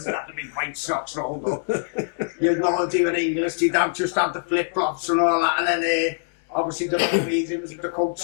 had the big white socks rolled up. You'd know they were English, you'd just have the flip-flops and all that, and then obviously the Norwegians with the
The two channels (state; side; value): silent; right; digital silence